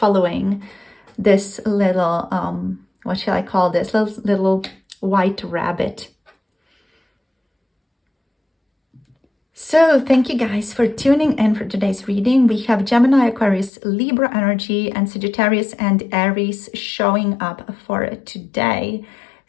this little what shall I call this, little white rabbit. So thank you guys for tuning in for today's reading. We have Gemini, Aquarius, Libra energy, and Sagittarius and Aries showing up for today.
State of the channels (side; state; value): right; drops out; at 13.7 s